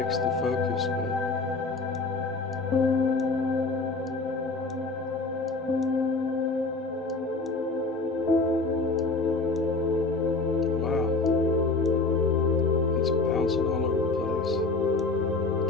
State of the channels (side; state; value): right; quieter; 3.5 dB